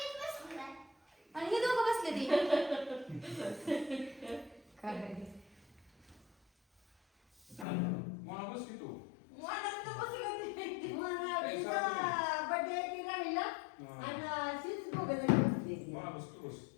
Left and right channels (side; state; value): right; drops out; at 7.7 s